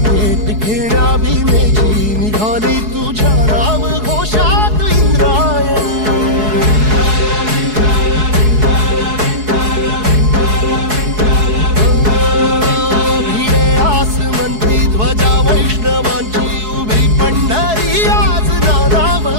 भेट घेण्या भीमेची निघाली तुझ्या नाम घोषात इंद्रायणी भिडे आसमंती ध्वजा वैष्णवांची उभी पंढरी आज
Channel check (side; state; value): left; late; 4.7 ms